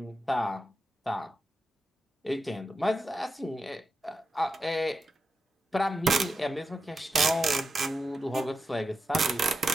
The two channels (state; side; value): normal; both; correlation 0.89